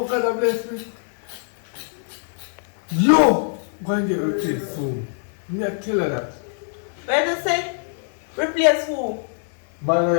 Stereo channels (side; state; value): right; silent; 63 dB below the other